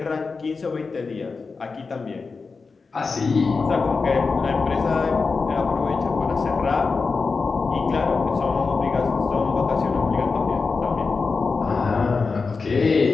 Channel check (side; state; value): right; quieter; 4.5 dB